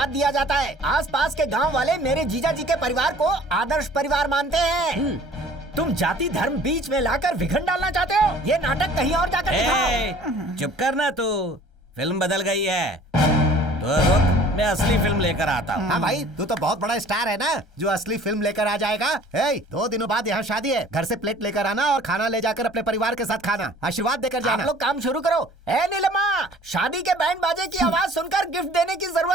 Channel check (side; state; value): both; normal; correlation 0.51